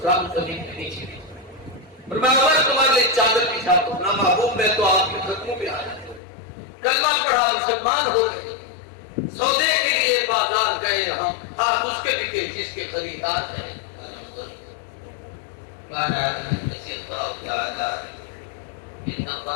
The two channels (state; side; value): drops out; right; at 6.2 s